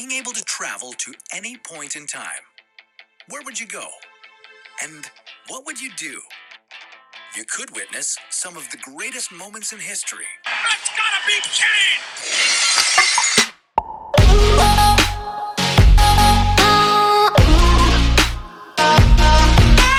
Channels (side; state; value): both; identical; correlation 1.00